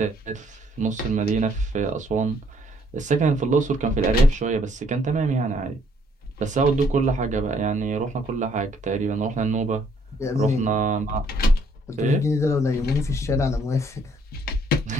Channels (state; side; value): normal; both; correlation 0.66